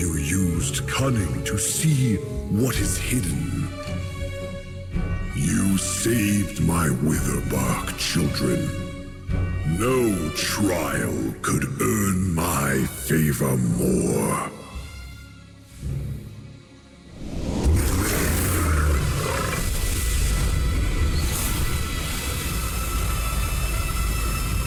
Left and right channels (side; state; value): both; identical; correlation 1.00